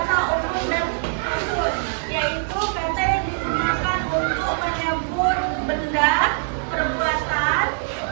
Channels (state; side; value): silent; left; digital silence